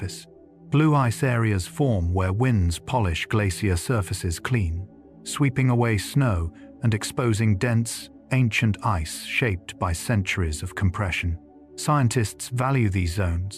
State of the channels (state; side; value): identical; both; correlation 1.00